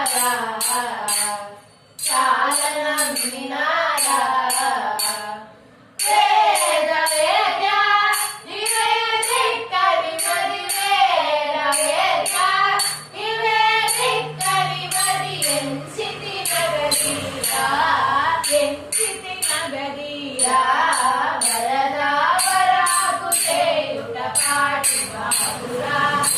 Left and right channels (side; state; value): both; identical; correlation 1.00